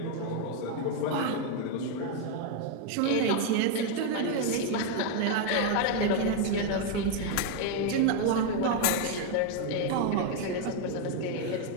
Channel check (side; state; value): both; different; correlation 0.01